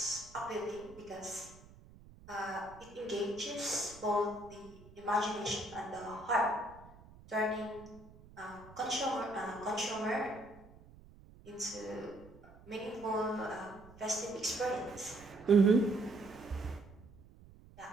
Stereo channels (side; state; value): right; noise; rumble, 21 dB below the sound